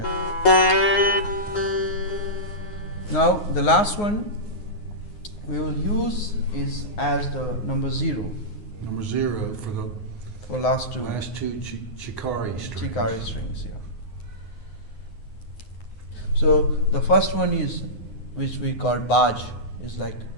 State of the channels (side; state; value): right; late; 9.6 ms